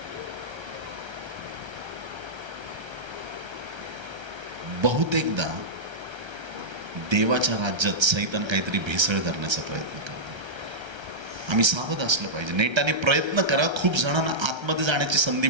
बहुतेकदा देवाच्या राज्यात सैतान काहीतरी भेसळ करण्याचा प्रयत्न करतो. आम्ही सावध असलं पाहिजे. नेटाने प्रयत्न करा, खूप जणांना आतमध्ये जाण्याची संधी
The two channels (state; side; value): late; left; 1.3 ms